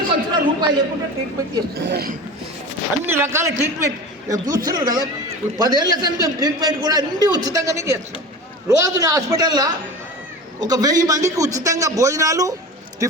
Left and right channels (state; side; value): normal; both; correlation 0.33